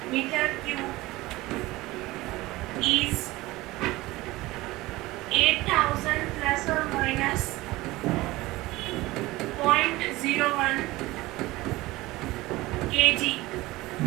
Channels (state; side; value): quieter; left; 19.3 dB